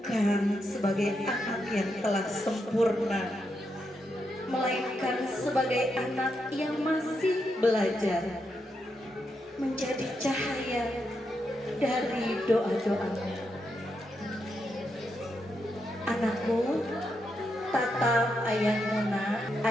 sebagai anak yang telah sempurna, melainkan sebagai anak yang masih belajar, menjadi cahaya dari doa-doamu. Anakku, tatap ayahmu nak.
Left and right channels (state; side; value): normal; both; correlation 0.83